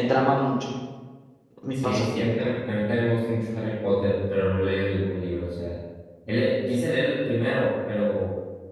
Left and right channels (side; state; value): both; identical; correlation 1.00